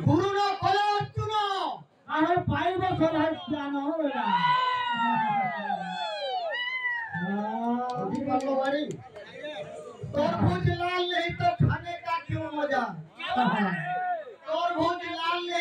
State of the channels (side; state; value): both; identical; correlation 1.00